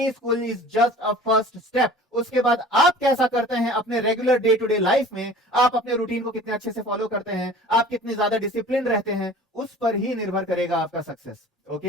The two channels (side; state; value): both; normal; correlation 0.44